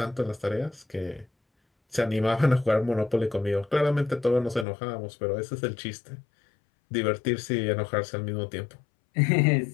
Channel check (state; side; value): drops out; right; at 4.7 s